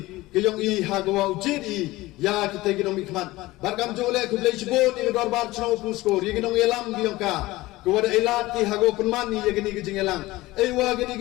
ke yang i ha ko wa ujit i ya kita ginong mikman barkam jole kudlei cibon ni dorbar chno puskor ye ginong elam giong ka kuwada elat ti hago penmani ye gini gijing elang wa gini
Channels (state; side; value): quieter; right; 19.0 dB